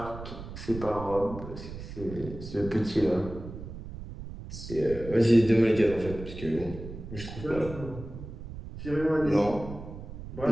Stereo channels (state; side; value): noise; right; rumble, 11 dB below the sound